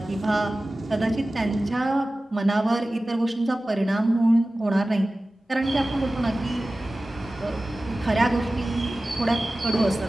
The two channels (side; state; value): both; normal; correlation 0.96